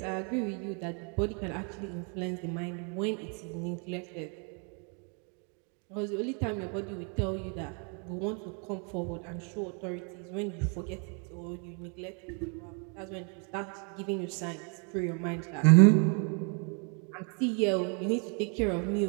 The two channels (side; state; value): left; quieter; 38.3 dB